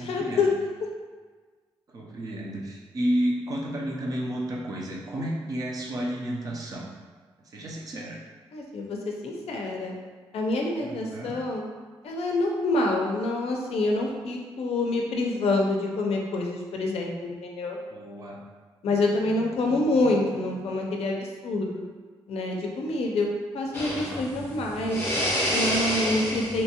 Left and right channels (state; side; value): normal; both; correlation 0.67